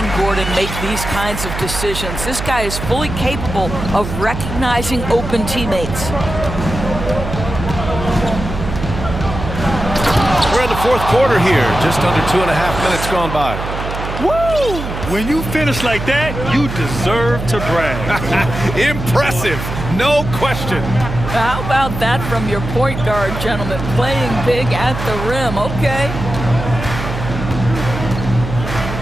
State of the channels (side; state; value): right; noise; hum, 6 dB below the sound